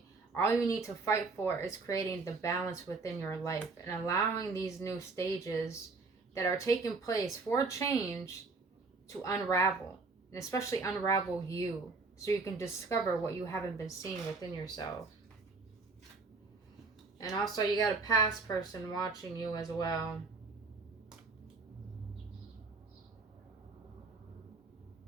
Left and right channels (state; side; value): quieter; left; 4.0 dB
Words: all you need to fight for is creating the balance within your life and allowing these new stages that are taking place for change to unravel. And especially unravel you, so you can discover what you haven't been seeing within yourself. And also you got a past person watching you as well.